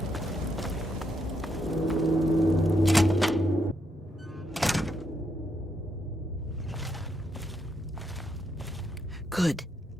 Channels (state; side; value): normal; both; correlation 0.78